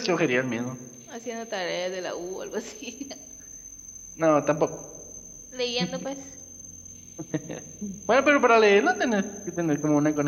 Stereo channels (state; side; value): identical; both; correlation 1.00